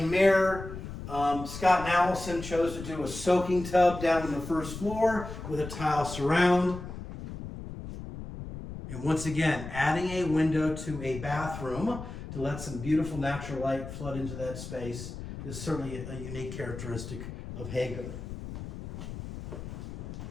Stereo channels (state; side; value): noise; left; rumble, 10 dB below the sound